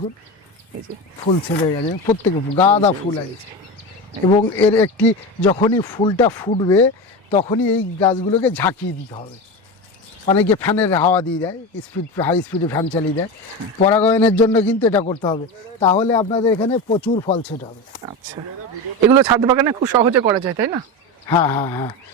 এই যে ফুল ছেড়ে গেছে, প্রত্যেকে গাঁদা ফুল আছে। এবং এর একটি যখনই ফুলটা ফুটবে তখনই এই গাছগুলোকে ঝাঁকিয়ে দিতে হবে। অনেকে ফ্যানের হাওয়া দিয়ে দেয়, হাই স্পিডে ফ্যান চালিয়ে দেয়, পরাগায়নের জন্য কিন্তু এটা করতে হবে, তাহলে আপনাদের এখানে প্রচুর ফল ছেট হবে। আচ্ছা, এগুলো ছাদ বাগানে খুব সহজে করা যায়, তাই না? হ্যাঁ হ্যাঁ হ্যাঁ,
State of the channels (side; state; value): both; normal; correlation 0.22